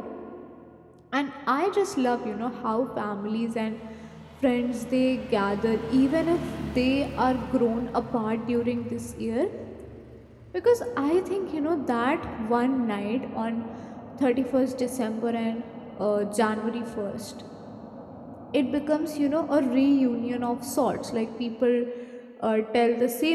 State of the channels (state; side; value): identical; both; correlation 1.00